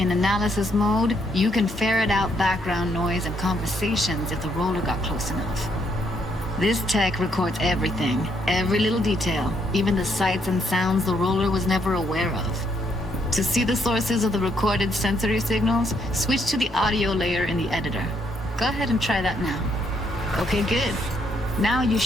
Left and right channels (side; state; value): both; normal; correlation 0.72